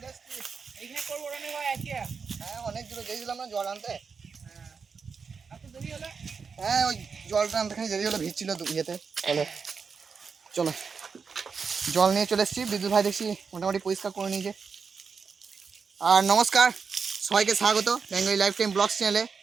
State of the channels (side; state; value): left; quieter; 5.6 dB